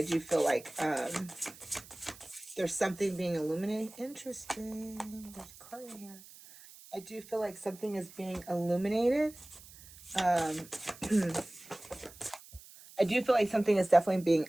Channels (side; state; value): right; noise; hiss, 20 dB below the sound